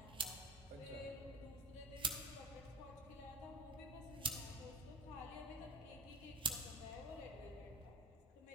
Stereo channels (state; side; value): normal; both; correlation 0.24